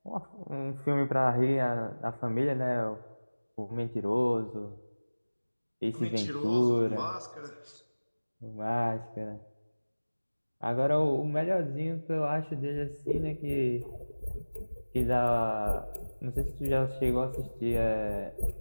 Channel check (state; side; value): inverted; both; correlation -1.00